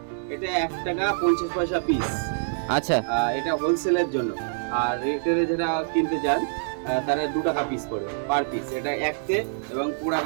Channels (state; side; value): silent; left; digital silence